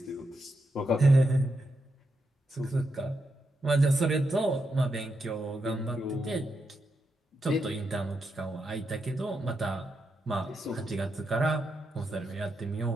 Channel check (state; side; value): normal; both; correlation 0.84